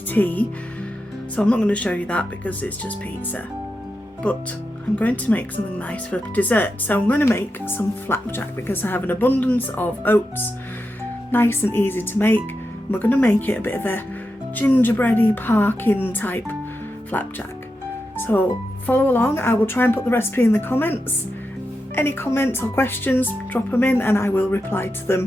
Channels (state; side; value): normal; both; correlation 0.88